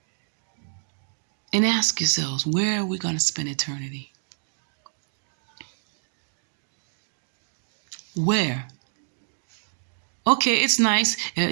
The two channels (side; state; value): left; silent; digital silence